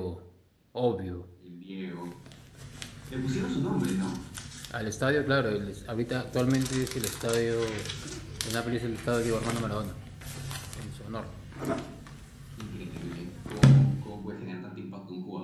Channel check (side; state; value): both; identical; correlation 1.00